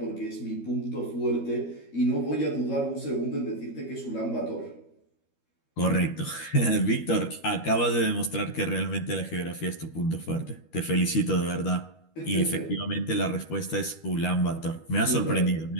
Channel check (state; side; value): late; right; 13 ms